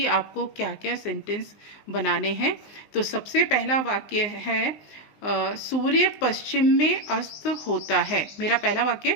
आपको क्या क्या सेंटेंस बनाने हैं। तो सबसे पहला वाक्य है सूर्य पश्चिम में अस्त होता है। मेरा पहला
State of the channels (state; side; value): late; right; 19 ms